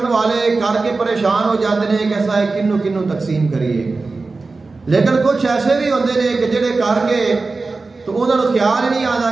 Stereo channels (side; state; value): left; quieter; 3.8 dB